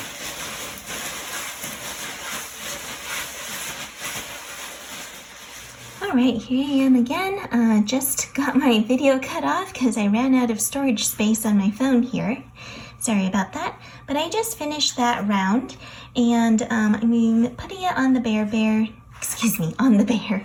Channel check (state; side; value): identical; both; correlation 1.00